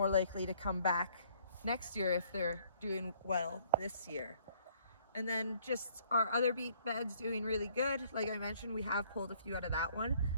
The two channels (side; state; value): both; inverted; correlation -0.62